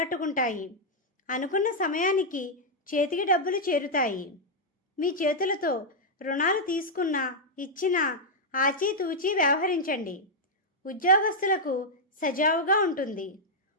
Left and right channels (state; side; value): normal; both; correlation -0.04